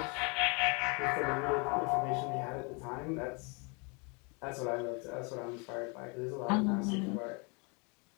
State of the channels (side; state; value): right; quieter; 32.1 dB